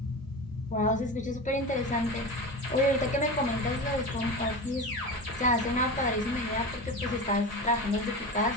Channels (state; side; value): normal; both; correlation 0.26